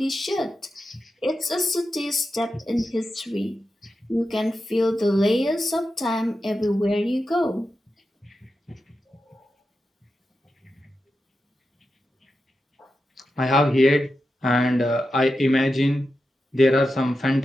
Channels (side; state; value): both; normal; correlation 0.90